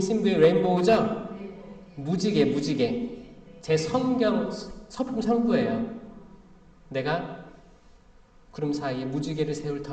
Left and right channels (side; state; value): both; identical; correlation 1.00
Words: 레인보우죠? 무지개. 제 성경 서품 선구예요. 내가 구름 사이에 무지개를 세울